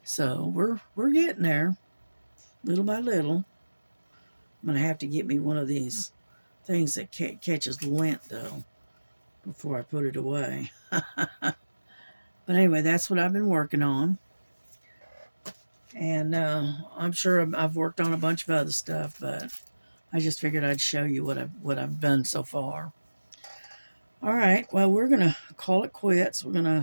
so we're getting there, little by little. I'm gonna have to get me one of these things that catches lint though, before I put it away. But anyway, that's what I've been working on. And I'm sure I've worked on a bunch of other stuff, but I just figured I'd show you what I've done so far. All right, well, we're gonna call it quits. We're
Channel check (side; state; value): both; inverted; correlation -1.00